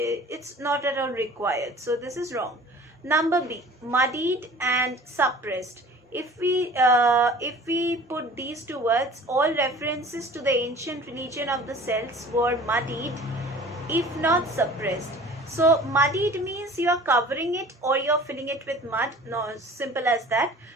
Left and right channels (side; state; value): both; normal; correlation 0.45